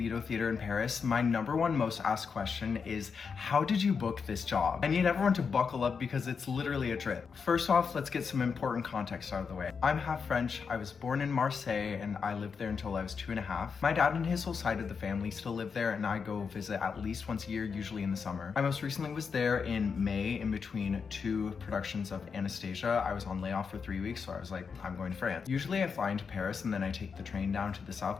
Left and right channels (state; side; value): quieter; right; 5.8 dB